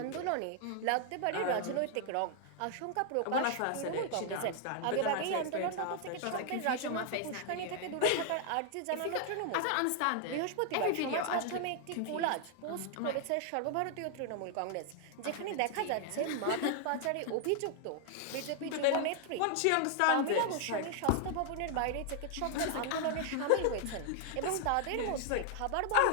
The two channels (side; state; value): both; different; correlation 0.00